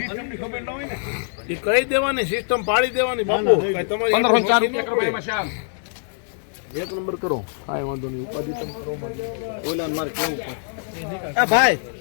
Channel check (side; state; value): right; silent; digital silence